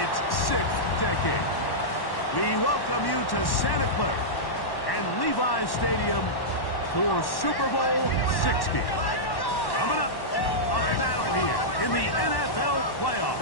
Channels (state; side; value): late; right; 1.1 ms